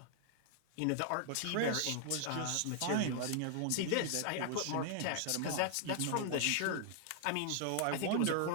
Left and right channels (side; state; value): both; different; correlation 0.00